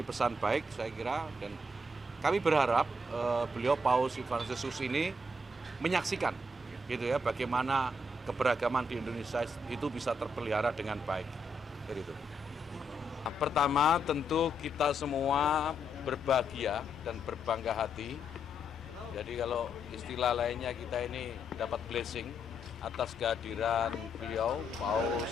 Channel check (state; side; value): normal; both; correlation 0.78